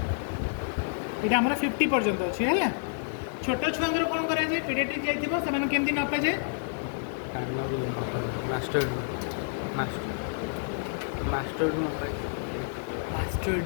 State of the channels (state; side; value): silent; right; digital silence